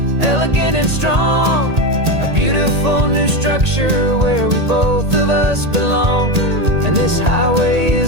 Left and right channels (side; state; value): left; late; 1.8 ms